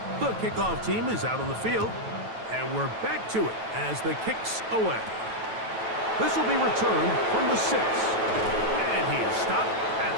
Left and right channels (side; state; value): left; late; 9.1 ms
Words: The kickoff team is out on the field, and we're back to it as the kick's away. This will be returned from the 6. And he is stopped at